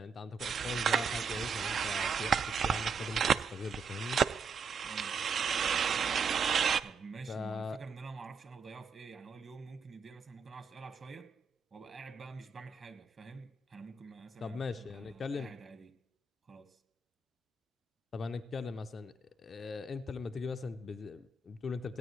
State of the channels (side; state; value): left; quieter; 4.7 dB